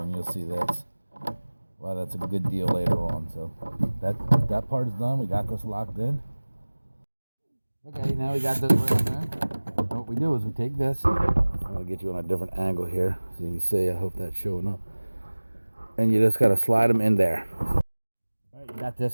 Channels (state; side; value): inverted; both; correlation -1.00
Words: and you'll see that's why that's a good deal later on. So that part is done. We got this locked in. Okay, now we got this rail done. What we do is we take this. I'm gonna get you on a different angle here so you can see. I hope that's showing up. And you just gotta slide them in there. All right, you got this